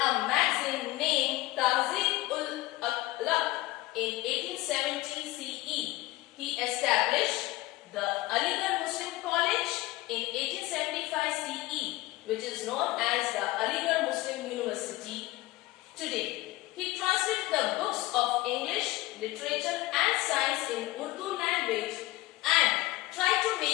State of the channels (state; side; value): quieter; right; 19.1 dB